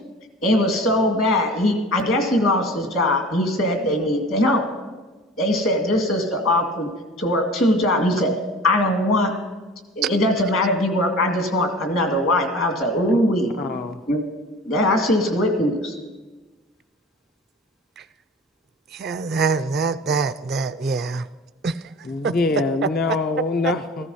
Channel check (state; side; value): normal; both; correlation 0.39